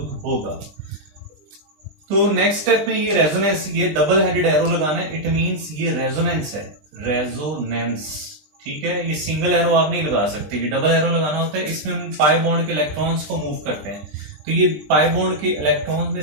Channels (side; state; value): left; late; 20 ms